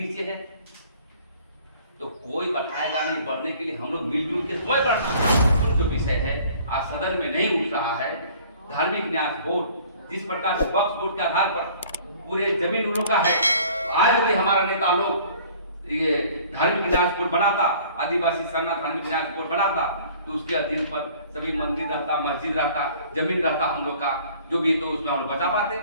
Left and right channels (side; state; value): both; inverted; correlation -0.52